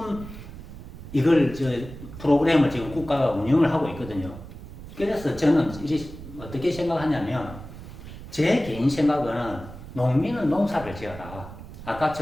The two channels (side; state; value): right; noise; rumble, 14 dB below the sound